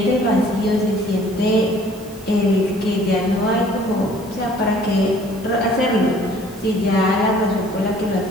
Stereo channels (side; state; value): both; normal; correlation 0.55